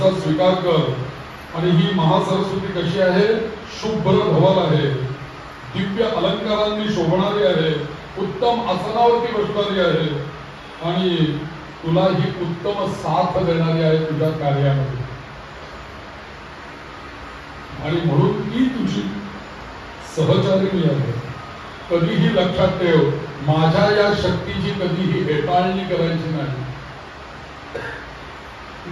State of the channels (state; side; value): identical; both; correlation 1.00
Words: स्वीकार कर. आणि ही महासरस्वती कशी आहे? शुभ्र धवल आहे, दिव्य अलंकारांनी शोभणारी आहे, उत्तम आसनावरती बसणारी आहे आणि तुला ही उत्तम साथ देणारी आहे तुझ्या कार्यामध्ये. आणि म्हणून ती तुझी सहचारिणी आहे. कधीही लक्षात ठेव, माझ्या या शक्तीची कधीही हेटाळणी करायची नाही.